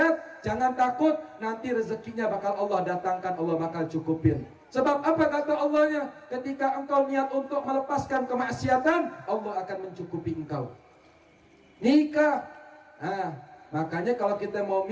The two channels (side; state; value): both; identical; correlation 1.00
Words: jangan takut, nanti rezekinya bakal Allah datangkan, Allah bakal cukupin. Sebab apa kata Allahnya? Ketika engkau niat untuk melepaskan kemaksiatan, Allah akan mencukupi engkau. Nikah. Makanya kalau kita mau